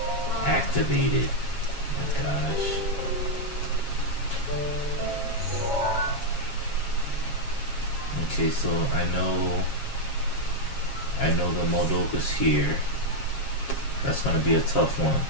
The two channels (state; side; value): late; right; 7.3 ms